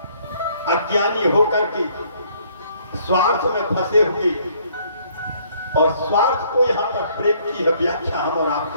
अज्ञानी होकर के स्वार्थ में फंसे हुए, और स्वार्थ को यहाँ पर प्रेम की व्याख्या हम और आप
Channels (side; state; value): both; inverted; correlation -0.64